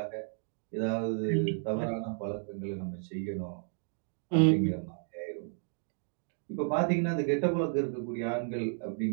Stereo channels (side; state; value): left; silent; digital silence